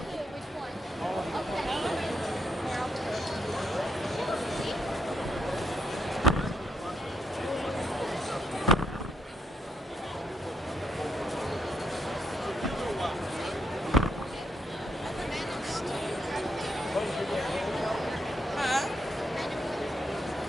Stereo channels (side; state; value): both; normal; correlation 0.77